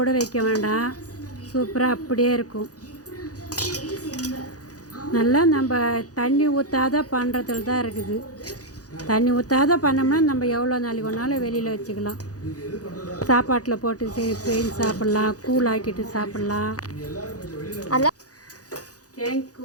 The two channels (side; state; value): right; late; 0.67 ms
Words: கூட வைக்க வேண்டாம். சூப்பராக அப்படியே இருக்கும். நல்லா நம்ம தண்ணி ஊற்றாத பண்ணுறதுல தான் இருக்குது. தண்ணி ஊற்றாத பண்ணோம்னா நம்ம எவ்வளோ நாளைக்கு ஒன்றாலும் வெளியில் வச்சுக்கலாம். சாப்பாட்டில் போட்டு செஞ்சு சாப்பிட்லாம், கூழ் ஆக்கிட்டு சாப்பிட்லாம்.